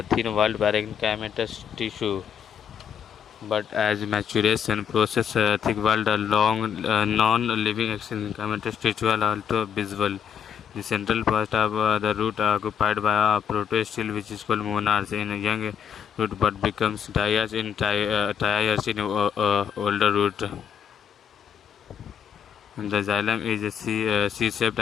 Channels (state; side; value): quieter; right; 7.8 dB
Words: thin-walled parenchymatous tissue. But as maturation process, thick-walled, long, non-living parenchymatous tissue are also visible. The central part of the root occupied by a protostele, which is called monarch in a young root, but becomes diarch in triarch in older root. And the xylem is a C-shaped